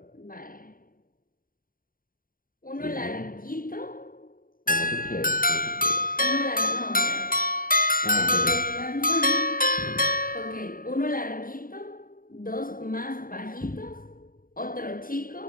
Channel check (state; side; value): late; right; 0.41 ms